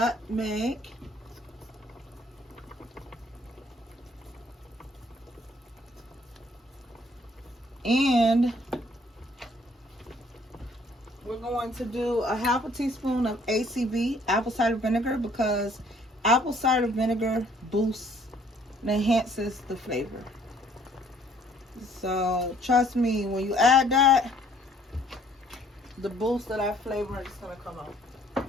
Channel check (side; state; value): both; normal; correlation 0.61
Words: And we're going to do a half a teaspoon of ACV, apple cider vinegar, because apple cider vinegar boosts and enhances the flavor. So trust me, when you add that, the boost of that flavor is gonna come out.